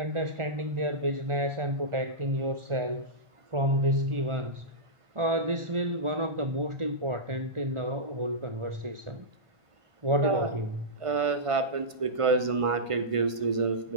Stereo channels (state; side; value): late; left; 1.5 ms